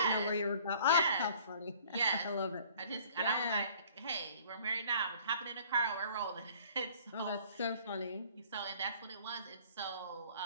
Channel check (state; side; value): inverted; both; correlation -0.53